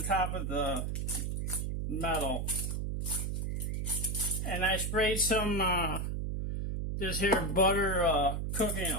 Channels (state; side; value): noise; right; hum, 1 dB below the sound